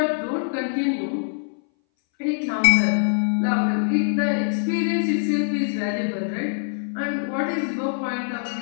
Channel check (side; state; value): right; silent; 60 dB below the other